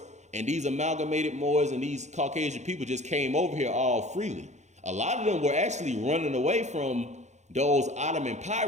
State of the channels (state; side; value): late; left; 0.33 ms